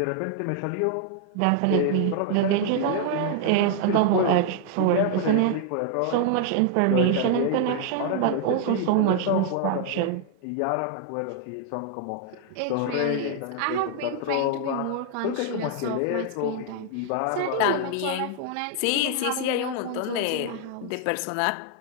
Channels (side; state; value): both; different; correlation 0.00